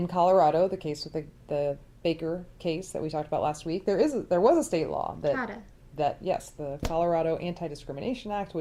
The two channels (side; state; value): both; identical; correlation 1.00